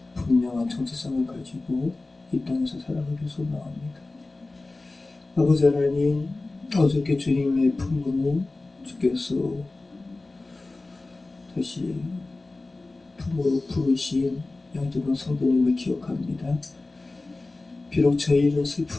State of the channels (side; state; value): right; quieter; 3.2 dB